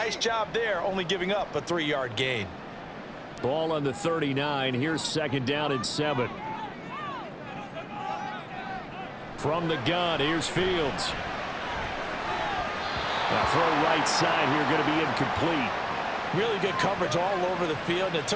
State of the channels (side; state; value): both; identical; correlation 1.00